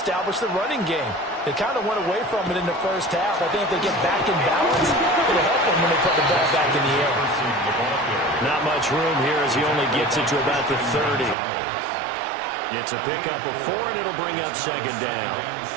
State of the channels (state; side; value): drops out; left; at 11.4 s